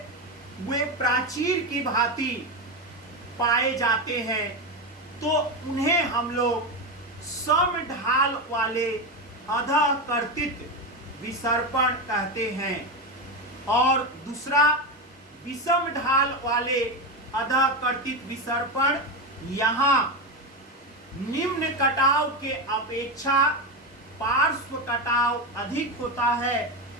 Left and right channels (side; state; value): both; normal; correlation 0.15